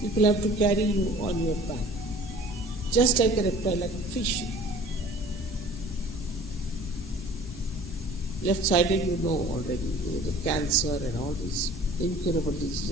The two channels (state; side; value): normal; both; correlation 0.47